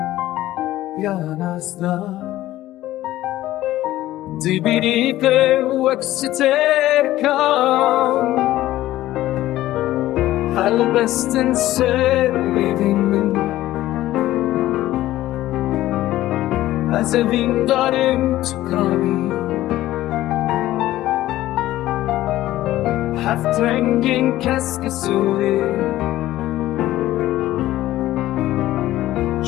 یا نازدا دیبیری که وقتر کام حال بستن سر میدیم از این دارم تو کاری هفت رنگین کس که سوی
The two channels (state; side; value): quieter; right; 15.0 dB